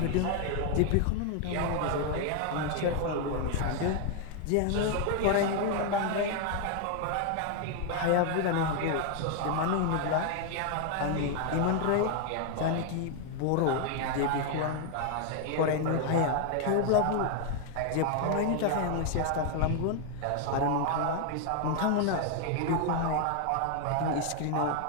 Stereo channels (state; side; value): different; both; correlation 0.01